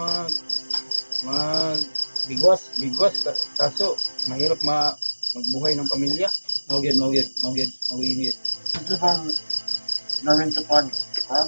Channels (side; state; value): both; inverted; correlation -1.00